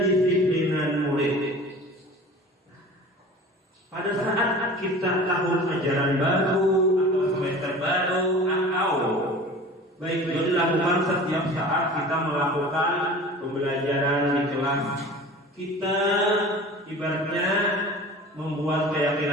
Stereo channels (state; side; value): normal; both; correlation 0.40